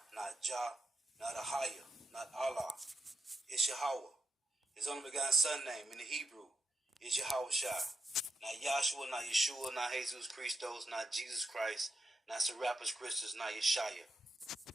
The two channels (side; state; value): both; normal; correlation 0.84